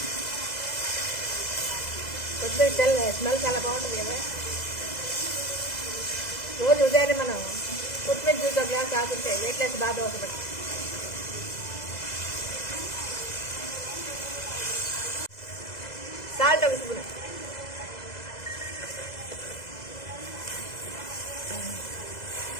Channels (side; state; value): right; late; 2.0 ms